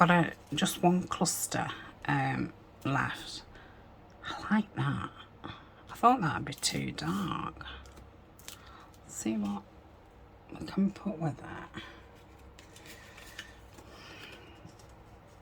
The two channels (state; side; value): identical; both; correlation 1.00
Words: just one cluster left. I like that. I thought that'd be too dark. Let's see what we can put with it.